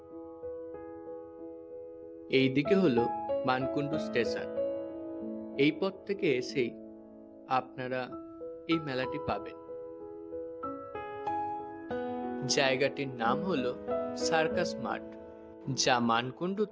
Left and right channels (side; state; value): both; identical; correlation 1.00